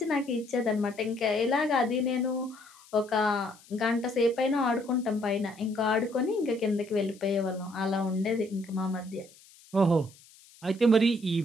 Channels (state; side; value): noise; left; hiss, 25 dB below the sound